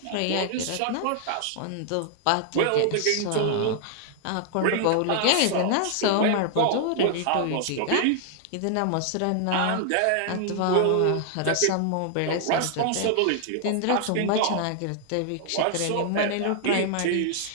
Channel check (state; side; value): different; both; correlation -0.01